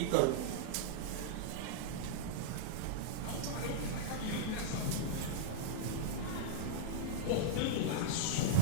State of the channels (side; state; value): both; different; correlation -0.02